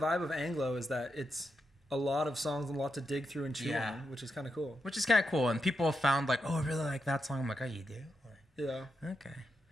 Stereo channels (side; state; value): both; normal; correlation 0.85